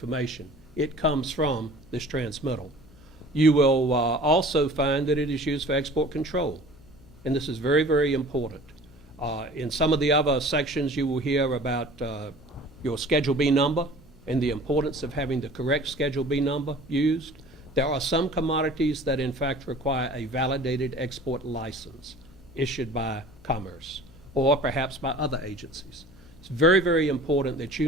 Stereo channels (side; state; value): left; noise; hum, 25 dB below the sound